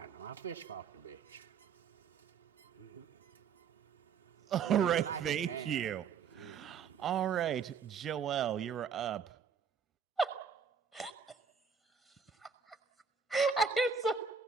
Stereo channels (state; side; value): quieter; left; 6.2 dB